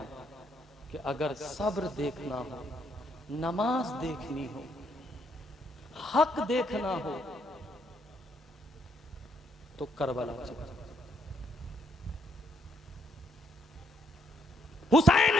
कि अगर सब्र देखना हो, नमाज देखनी हो, हक देखना हो तो करबला चले। हुसैन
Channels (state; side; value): normal; both; correlation 0.72